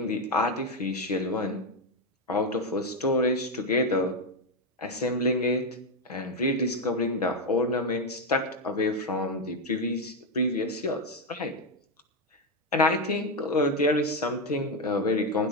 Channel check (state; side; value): normal; both; correlation 0.07